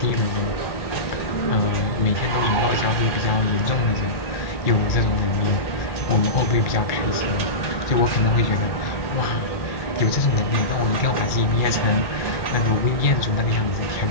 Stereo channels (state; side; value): late; right; 1.8 ms